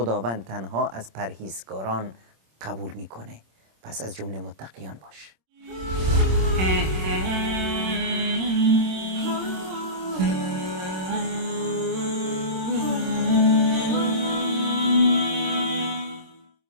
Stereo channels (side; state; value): left; late; 26 ms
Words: تنها از پرهیزگاران قبول میکنه، پس از جمله متقیان باش.